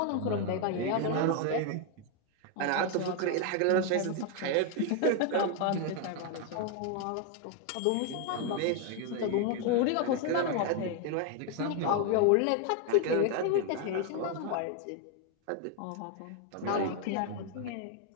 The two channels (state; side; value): different; both; correlation 0.01